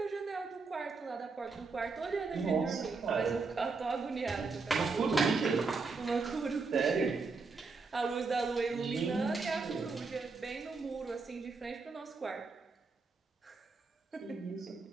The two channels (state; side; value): quieter; left; 4.3 dB